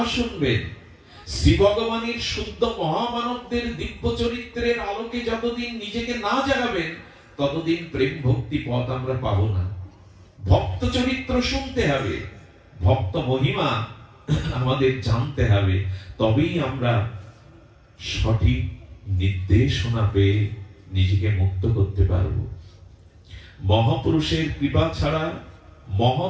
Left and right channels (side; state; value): both; identical; correlation 1.00